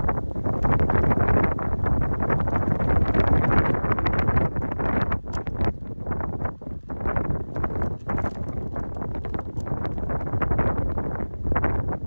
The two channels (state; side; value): inverted; both; correlation -1.00